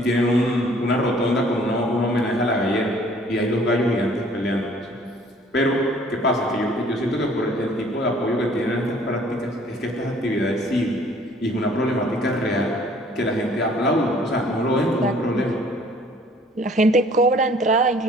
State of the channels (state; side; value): normal; both; correlation 0.56